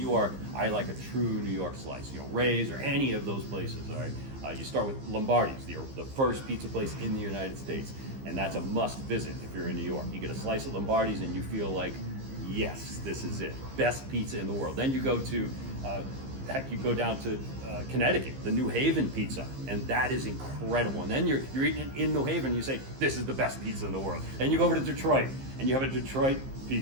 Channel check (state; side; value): late; left; 15 ms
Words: I like a true New York slice. Ray's or any of those places, all right? You start with Lombardi's, the first pizza place in the United States, and that's a must visit if you're in New York. You get a slice of Lombardi's and you feel like, yes, this is it. Best pizza in the world. Then you go to, you go down to Connecticut, the New Haven pizza, and that is incredible. And then you're eating it in New Haven, you say, this is the best pizza in the world. Then you go over to Detroit, and you have a Detroit